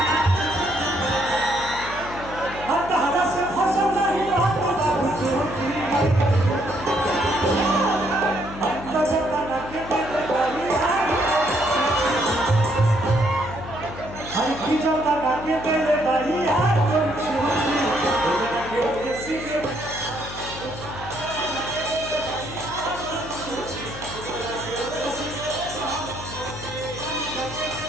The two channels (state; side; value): noise; left; hum, 12 dB below the sound